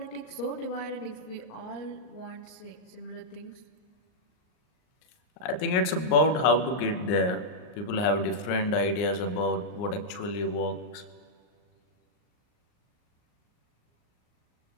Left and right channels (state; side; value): late; right; 39 ms